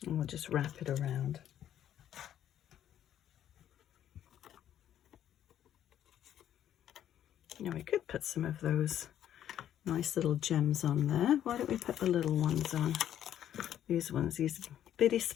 And we'll just wrap it around. Now we could put some of those nice little gems on there. Why don't we put the little ones on? These ones, these bitty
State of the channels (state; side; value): quieter; right; 10.8 dB